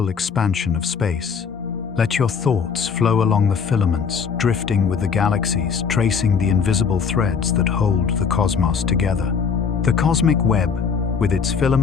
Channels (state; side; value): quieter; right; 6.1 dB